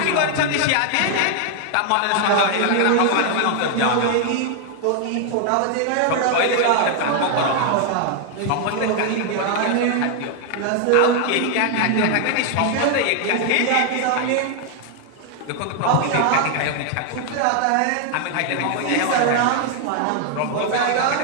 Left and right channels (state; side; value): different; both; correlation 0.00